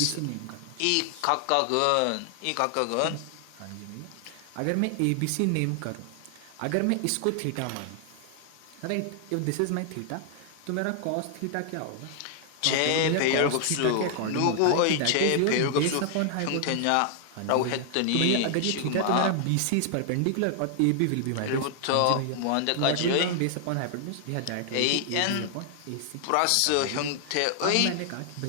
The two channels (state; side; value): different; both; correlation 0.00